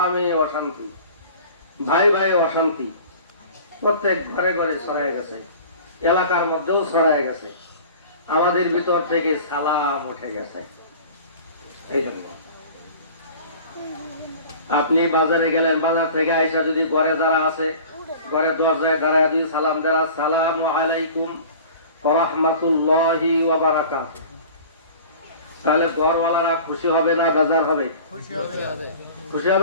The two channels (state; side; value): inverted; both; correlation -0.42